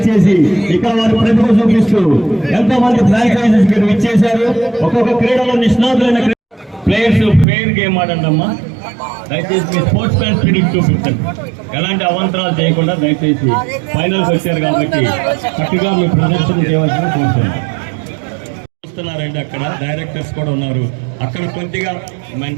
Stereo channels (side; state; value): left; drops out; at 7.5 s